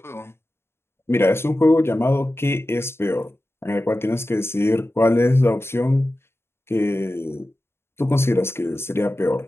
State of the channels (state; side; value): late; right; 0.12 ms